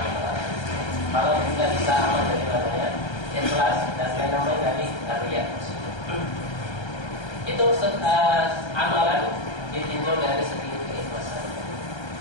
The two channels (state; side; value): late; right; 1.3 ms